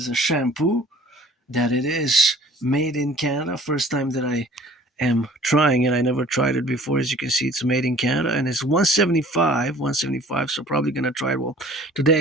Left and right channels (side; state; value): both; normal; correlation 0.50